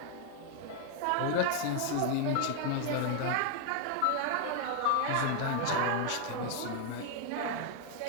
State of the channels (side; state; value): both; different; correlation 0.00